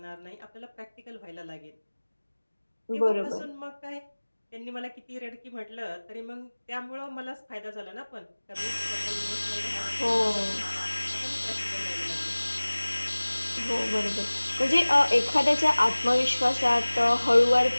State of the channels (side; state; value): both; inverted; correlation -1.00